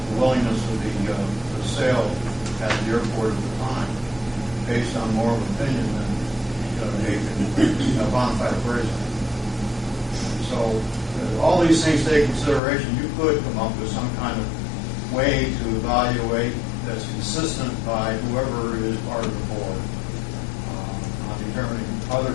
willingness of the sale at the airport at the time, based on more of an opinion than a bona fide appraisal. So all these things take consideration. You could come up with some kind of way to evaluate that's consistent by whoever is part of the board on determining other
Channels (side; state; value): right; drops out; at 12.6 s